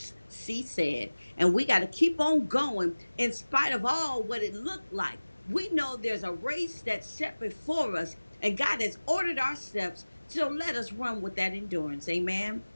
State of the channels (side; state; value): both; inverted; correlation -1.00